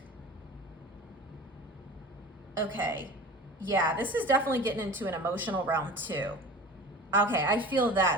okay, yeah, this is definitely getting into an emotional realm too. Okay, I feel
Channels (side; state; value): both; normal; correlation 0.38